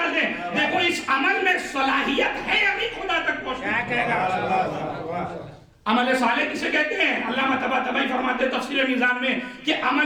دیں. دیکھو اس عمل میں صلاحیت ہے ابھی خدا تک پہنچنا. عمل صالح کسے کہتے ہیں؟ علامہ طباطبائی فرماتے ہیں تفسیر میزان میں کہ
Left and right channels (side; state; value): both; identical; correlation 1.00